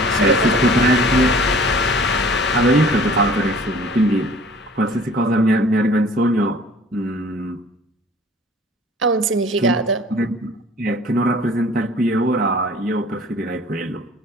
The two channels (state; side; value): normal; both; correlation 0.49